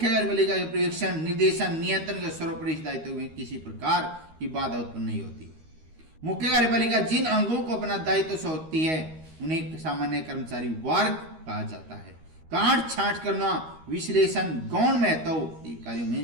कार्यपालिका के पर्यवेक्षण, निर्देशन, नियंत्रण के सर्वोपरि दायित्व में किसी प्रकार की बाधा उत्पन्न नहीं होती। मुख्य कार्यपालिका जिन अंगों को अपना दायित्व सौंपती है उन्हें सामान्य कर्मचारी वर्ग कहा जाता है। काट छांट करना, विश्लेषण, गौण महत्व कार्यों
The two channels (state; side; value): late; left; 13 ms